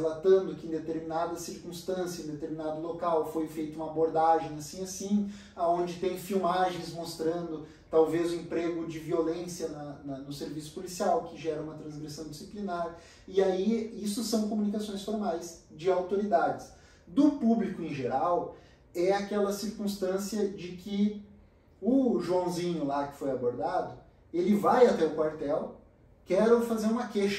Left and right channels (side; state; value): both; identical; correlation 1.00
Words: que em determinada circunstância, em determinado local, foi feita uma abordagem assim, onde tem filmagens mostrando talvez o emprego de violência no serviço policial, que gera uma transgressão disciplinar. E aí, isso são comunicações formais de autoridades. Do público em geral, é aquela circunstância de que o Joãozinho lá que foi abordado, ele vai até o quartel, quero fazer uma